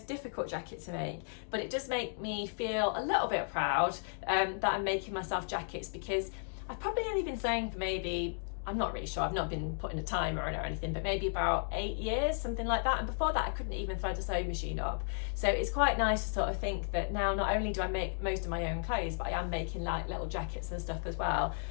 difficult jacket to make, but it does make me feel a little bit proud that I'm making myself jackets, because I've probably only been sewing for maybe, I'm not really sure, I've not been putting a timer on it or anything, but maybe about 8 years, something like that. And before that, I couldn't even thread a sewing machine up. So it's quite nice to sort of think that now not only do I make most of my own clothes, but I am making like little jackets and stuff as well.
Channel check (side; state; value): right; silent; digital silence